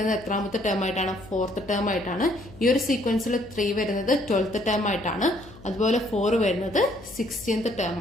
എത്രാമത്തെ ടേം ആയിട്ടാണ്? 4th ടേം ആയിട്ടാണ്. ഈ ഒരു സീക്വൻസിൽ 3 വരുന്നത് 12th ടേം ആയിട്ടാണ്. അതുപോലെ 4 വരുന്നത് 16th ടേം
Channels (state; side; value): noise; left; hum, 20 dB below the sound